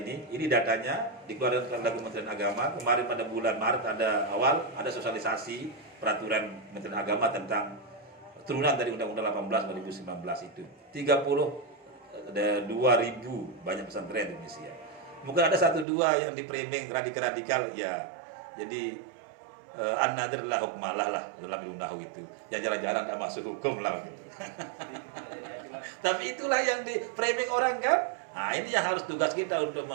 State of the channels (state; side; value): drops out; left; at 15.9 s